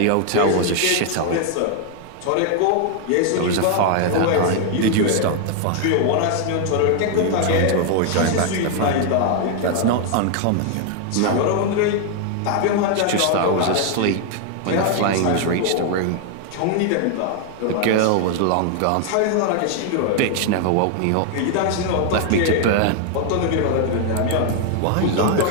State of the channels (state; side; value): different; both; correlation 0.00